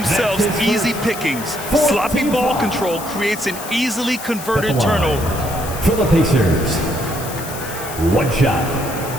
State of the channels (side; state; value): left; noise; hiss, 11 dB below the sound